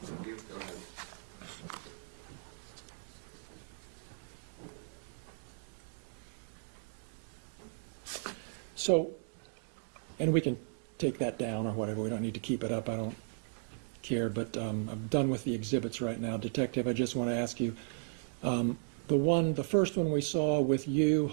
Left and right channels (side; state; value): left; silent; digital silence